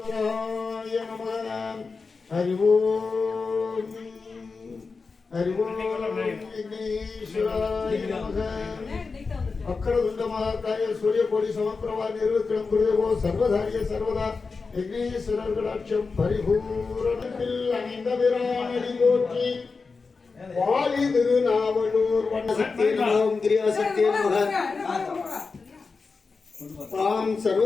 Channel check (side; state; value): right; quieter; 4.5 dB